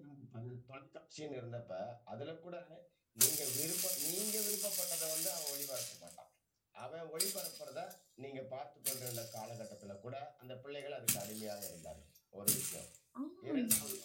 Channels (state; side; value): identical; both; correlation 1.00